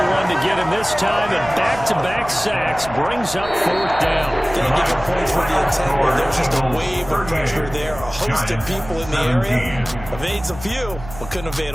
one to get him this time, and back-to-back sacks brings up fourth down. Can't give him points for the intent where there's just a wave of pressure there. A host of people in the area. Evades a few, but couldn't evade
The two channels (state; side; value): noise; right; hum, 14 dB below the sound